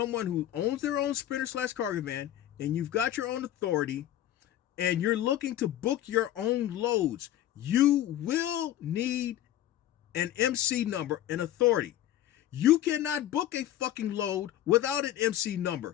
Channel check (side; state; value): right; quieter; 12.6 dB